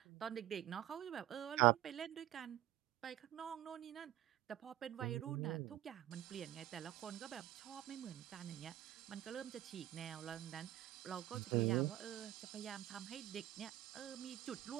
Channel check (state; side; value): quieter; left; 14.0 dB